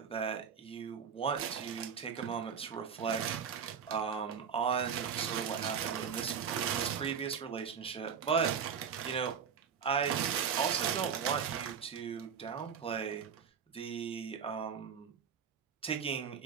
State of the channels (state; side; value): quieter; left; 7.1 dB